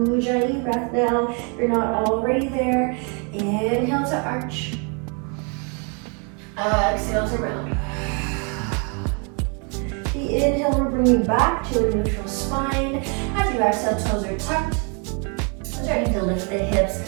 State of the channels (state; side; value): quieter; left; 36.3 dB